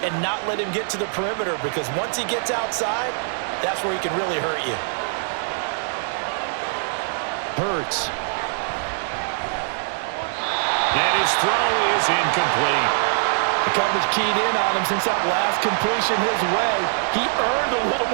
and not let him get to the perimeter, because once he gets outside, that's where he can really hurt you. Hurts. And his throw is incomplete. The coverage keyed in on him since that last completion his way. He earned a little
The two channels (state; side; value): silent; left; digital silence